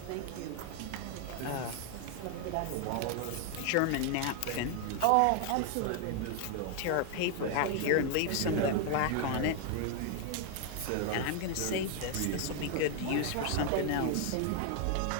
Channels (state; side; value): different; both; correlation 0.00